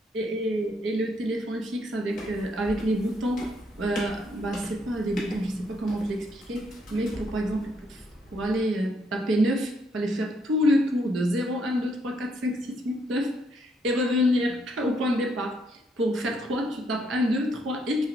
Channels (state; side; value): normal; both; correlation 0.73